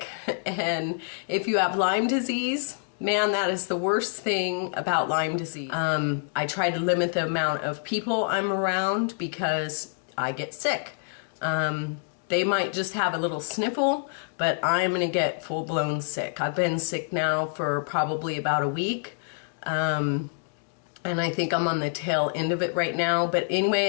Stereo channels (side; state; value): right; silent; digital silence